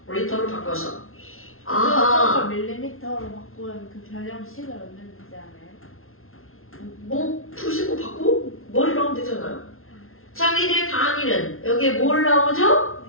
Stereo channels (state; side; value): late; right; 0.61 ms